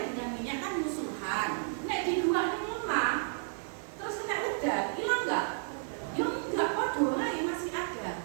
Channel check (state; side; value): silent; left; 56 dB below the other